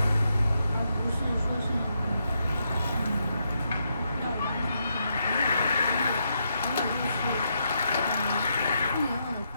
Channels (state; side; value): inverted; both; correlation -0.80